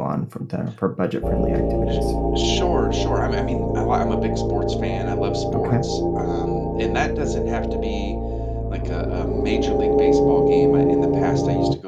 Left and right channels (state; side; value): identical; both; correlation 1.00